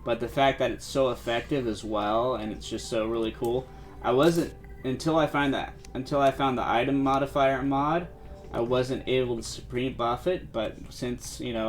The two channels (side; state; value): both; identical; correlation 1.00